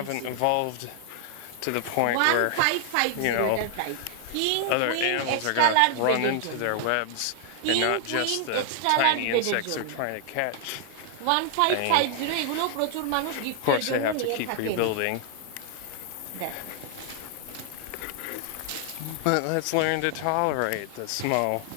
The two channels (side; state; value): both; different; correlation 0.00